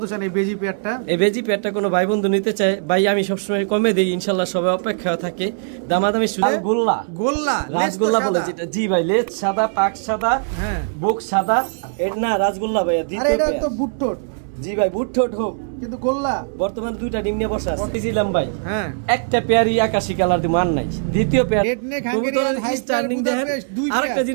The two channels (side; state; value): left; silent; 66 dB below the other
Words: চান এই বেজি পেয়ারটা? এই বেজি পেয়ারটা কোনো ভাই বন্ধু নিতে চায় ভাই, আমি সবসময় কমে দেই, ইনশাল্লাহ সবাই অপেক্ষা থাকে। দামাদামি গোল্লা গোল্লা রাজগোল্লা বলে যেটা। জি ভাই, লেজ সাদা, পাক সাদা, হ্যাঁ বুক সাদা। এটা না রাজগোল্লা ভাইয়া, দ্বিতীয় পেয়ার। এটা তো বুটটোট। জি ভাই, বুটটোট হোক কিন্তু গোল্লা। বর্তমান দুইটা ডিম নিয়ে বসা আছে। দিছিলাম ভাই, হ্যাঁ একটা পেয়ারই আকাশী কালার দি মান নাই। দ্বিতীয় পেয়ার রেড নেক হাঙ্গেরিয়ান হাইস্টার বুদাপেস্ট দুই পেয়ার। আরেকটা